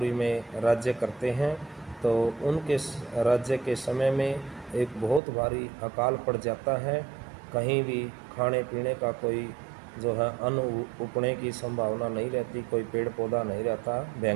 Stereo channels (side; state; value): left; drops out; at 5.2 s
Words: में राज्य करते हैं। तो उनके राज्य के समय में एक बहुत भारी अकाल पड़ जाता है। कहीं भी खाने पीने का कोई जो है अन्न उगने की संभावना नहीं रहती, कोई पेड़ पौधा नहीं रहता।